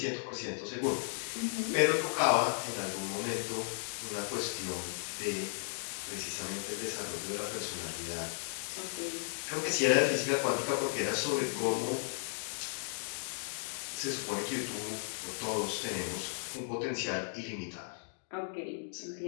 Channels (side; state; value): right; silent; digital silence